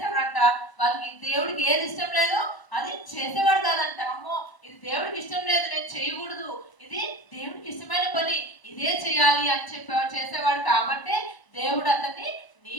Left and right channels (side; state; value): right; late; 1.0 ms